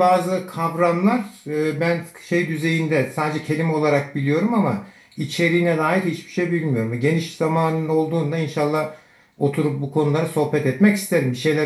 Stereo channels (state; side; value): identical; both; correlation 1.00